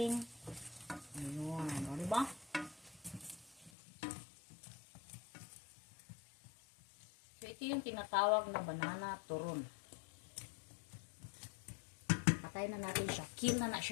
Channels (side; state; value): right; drops out; at 3.7 s